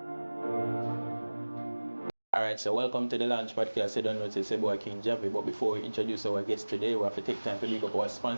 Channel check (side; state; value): both; inverted; correlation -1.00